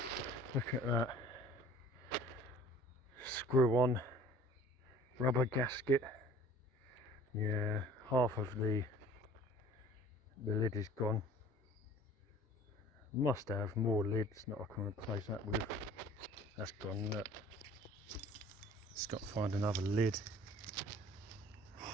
Look at that. Screw on rubber gasket. Yeah, half of the lid is gone. Must have more lids that I can replace that with. That's gone. Look. Just got to find another lid.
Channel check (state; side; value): normal; both; correlation 0.48